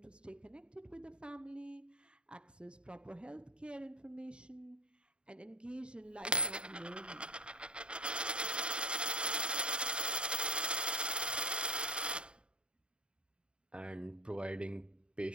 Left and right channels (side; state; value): left; late; 0.052 ms